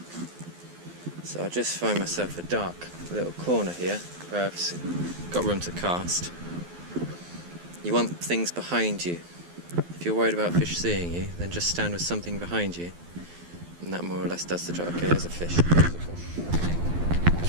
So I'll just find myself a dark little corner here where I've got room to cast. You want things behind you. If you're worried about fish seeing you, then just stand with something behind you, and that more or less does the job. Okay, there's a fish.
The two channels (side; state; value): left; late; 12 ms